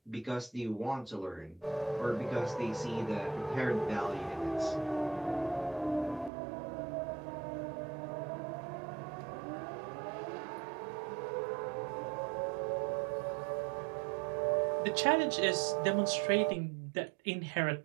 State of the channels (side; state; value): left; drops out; at 6.3 s